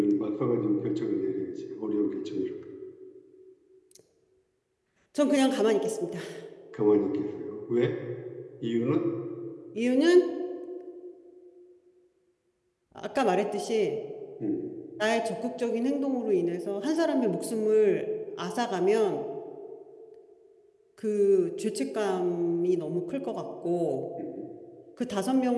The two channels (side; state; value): both; identical; correlation 1.00